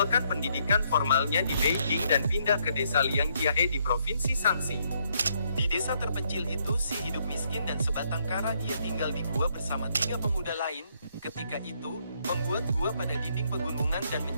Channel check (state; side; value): inverted; both; correlation -0.72